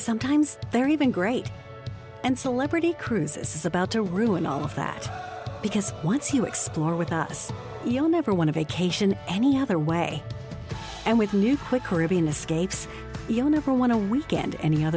they're even great. And Celebrity Cruises is about to ruin all of that. Because once you explore with us, you'll never want a vacation any other way. And with new Quick Caribbean escapes, you'll never want a weekend any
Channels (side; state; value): both; identical; correlation 1.00